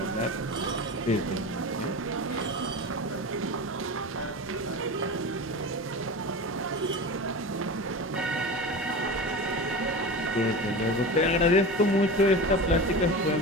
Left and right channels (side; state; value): both; normal; correlation 0.29